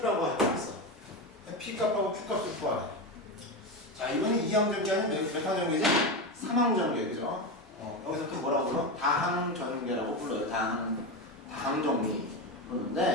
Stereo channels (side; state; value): both; normal; correlation 0.17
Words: 했어. P 값하고 Q 값을 구하래. 자, 이번에 2항 전개 아니면 몇 항 전개지? 3항 전개, 그죠? 여기서 또 뭐라고 불러? 다항 전개라고 불러요. 다항 정리